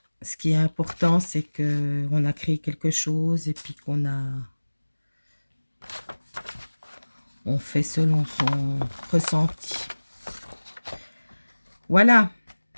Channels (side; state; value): both; inverted; correlation -1.00